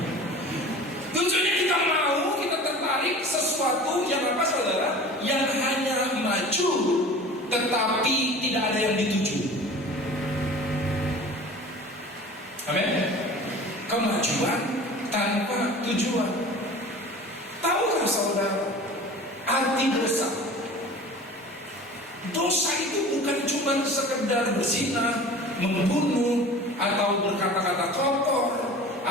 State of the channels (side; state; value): both; normal; correlation 0.40